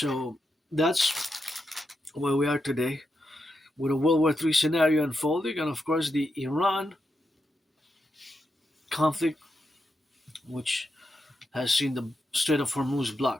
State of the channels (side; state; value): both; normal; correlation 0.85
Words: that's where we are today, with a World War III scenario unfolding, and of course the Iran conflict, which has seen the Strait of Hormuz